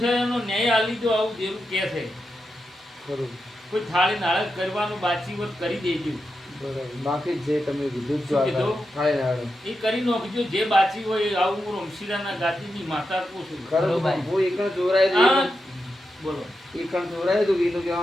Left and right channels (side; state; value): both; normal; correlation 0.88